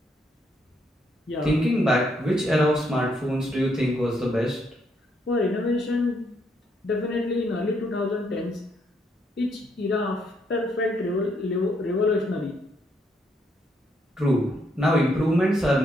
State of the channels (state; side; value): normal; both; correlation 0.74